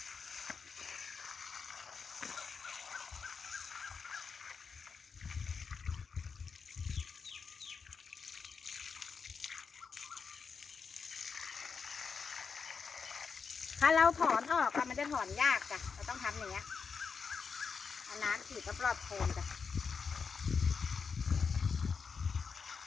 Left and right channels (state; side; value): quieter; right; 5.6 dB